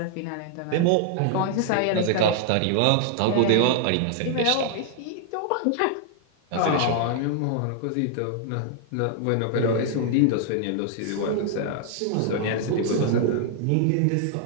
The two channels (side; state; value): both; different; correlation 0.00